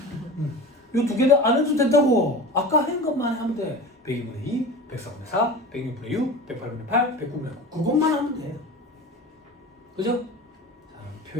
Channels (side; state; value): both; normal; correlation 0.33